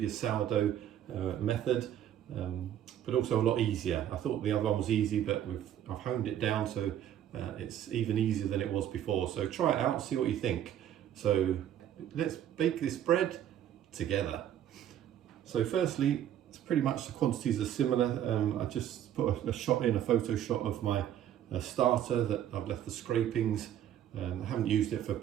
sourdough method, but also a lot easier. I thought the other one was easy, but I've honed it down so it's even easier than it was before. So try it out, see what you think. So let's bake this bread together. So firstly, it's pretty much the quantities are similar. I just put a photo shot of my starter that I've left the scrapings. I haven't used it for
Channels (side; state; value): left; quieter; 10.8 dB